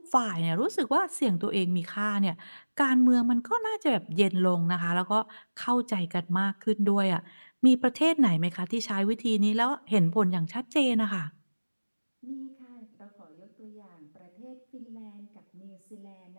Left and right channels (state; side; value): inverted; both; correlation -1.00